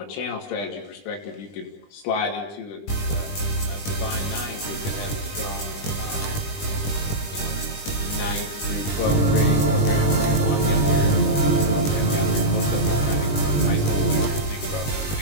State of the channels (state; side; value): late; right; 20 ms